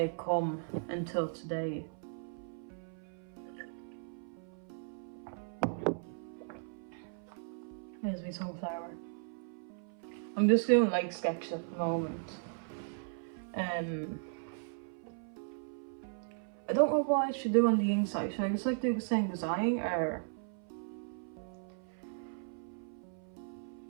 had come until today. Here's my sunflower. I'm just doing like sketches at the moment. I don't know what I should do on the inside. Should I just like do the same design, or?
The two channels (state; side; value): silent; left; 53 dB below the other